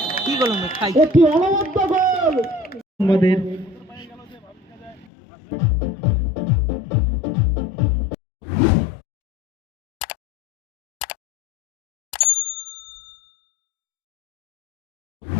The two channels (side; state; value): right; drops out; at 5.1 s